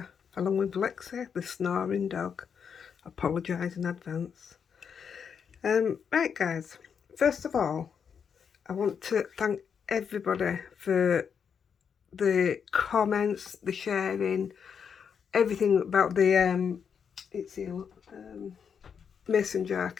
along with Lexi, the snoring dog. Apologise in advance. Right guys, first of all, I want to thank everybody for the comments, the sharing, everything about the mason jar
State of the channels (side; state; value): right; quieter; 7.0 dB